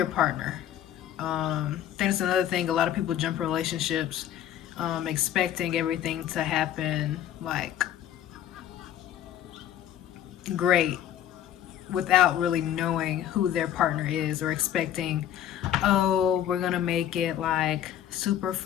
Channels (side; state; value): right; quieter; 11.0 dB